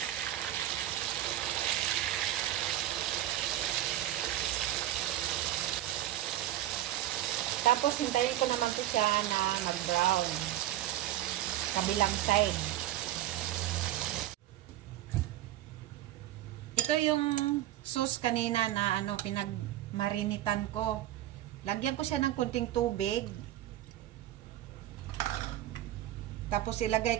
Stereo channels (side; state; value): left; quieter; 13.8 dB